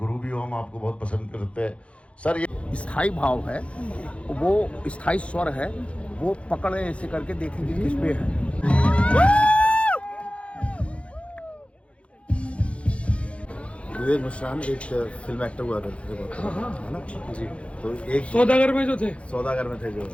भी हो, हम आपको बहुत पसंद करते हैं सर। ये स्थाई भाव है, वो स्थाई स्वर है, वो पकड़े ऐसे करके देखेंगे किस पे है। विवेक मिश्रान एक फिल्म एक्टर हुआ करते थे बहुत, है ना जी। तो एक सौदागर में जो थे, सौदागर में थे जो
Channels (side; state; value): right; late; 0.061 ms